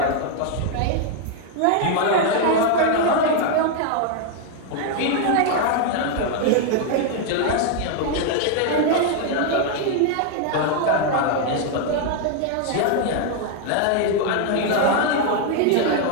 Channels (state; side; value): different; both; correlation 0.00